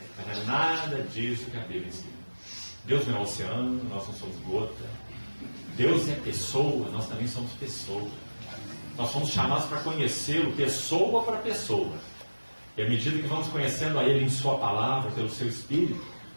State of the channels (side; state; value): both; inverted; correlation -1.00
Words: Mas não é nada disso que a Bíblia ensina. Deus não é oceano, nós não somos gota. Deus é pessoa, nós também somos pessoa. Nós somos chamados para conhecê-lo pessoa para pessoa. E à medida que vamos conhecendo a Ele em Sua palavra, pelo Seu Espírito,